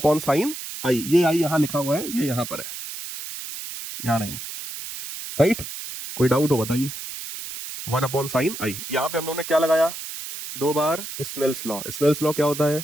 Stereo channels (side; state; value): right; noise; hiss, 9 dB below the sound